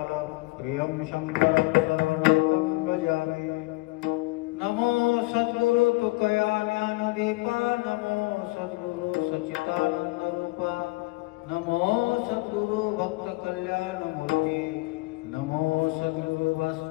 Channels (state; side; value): quieter; right; 23.7 dB